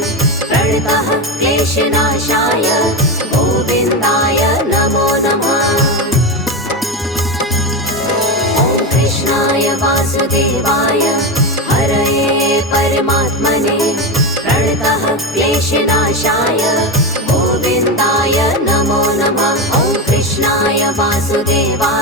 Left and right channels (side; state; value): both; normal; correlation 0.16